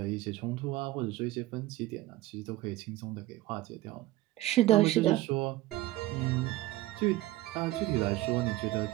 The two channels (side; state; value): left; quieter; 16.7 dB